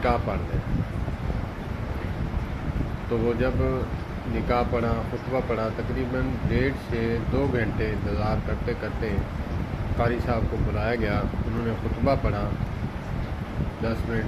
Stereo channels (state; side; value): identical; both; correlation 1.00